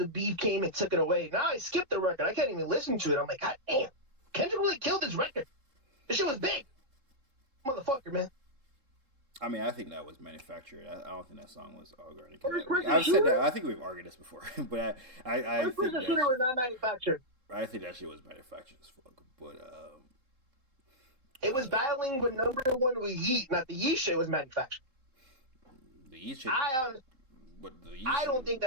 beef came and took it away. Now I skipped the record. I can't even listen to it. I'm like, God damn, Kendrick really killed this record. This shit was big, motherfucker, man. I mean, I think that was manufactured. I don't think that song was organic. I've said that. I think we've argued this before, but I think that shooter was not manufactured. I think that shit was manufactured as fuck. But it was battling with number one with Yeet. Not the Yeet shit was manufactured. The Yeet shit. I don't think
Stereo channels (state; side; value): late; left; 3.8 ms